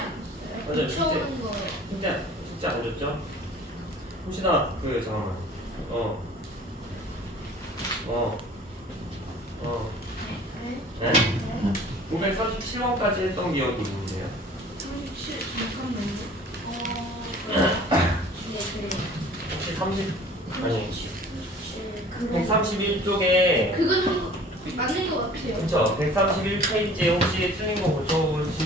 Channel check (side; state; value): both; normal; correlation 0.48